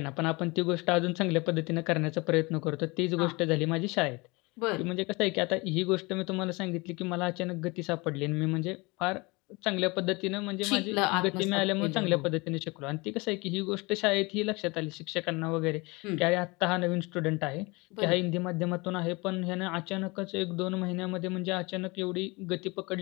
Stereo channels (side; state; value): right; quieter; 25.7 dB